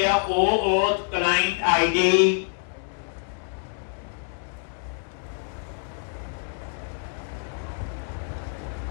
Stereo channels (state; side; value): silent; right; 61 dB below the other